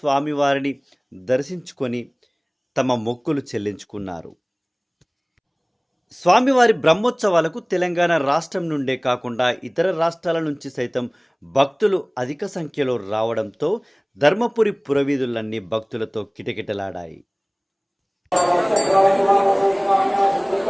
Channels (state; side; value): identical; both; correlation 1.00